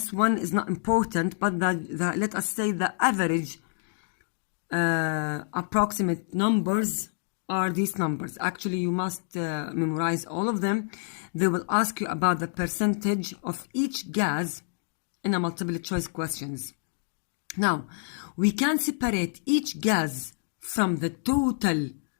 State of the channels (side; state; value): right; silent; digital silence